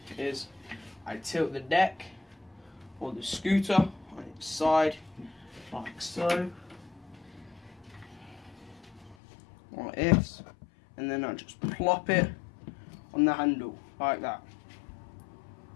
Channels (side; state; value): right; drops out; at 9.2 s